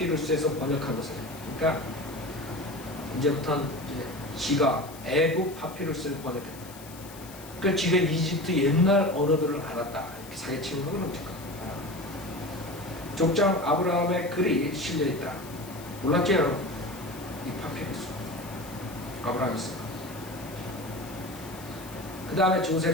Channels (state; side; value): noise; left; hiss, 18 dB below the sound